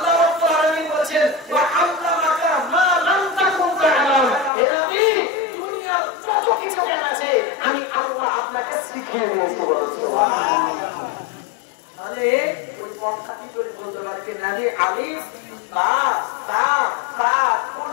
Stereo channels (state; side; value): drops out; right; at 4.5 s